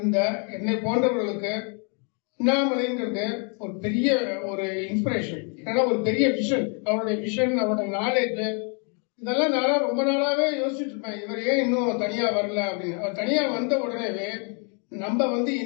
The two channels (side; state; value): right; quieter; 38.3 dB